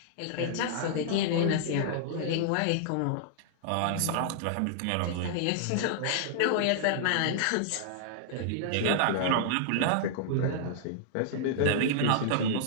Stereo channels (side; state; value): both; different; correlation -0.01